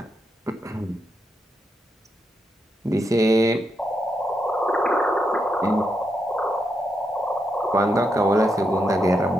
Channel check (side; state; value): both; normal; correlation 0.82